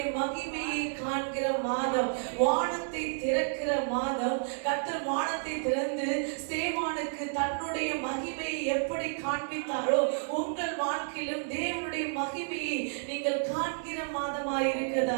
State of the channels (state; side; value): silent; left; digital silence